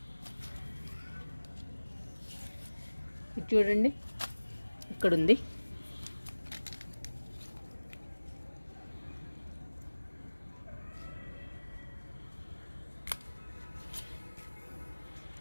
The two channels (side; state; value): both; inverted; correlation -1.00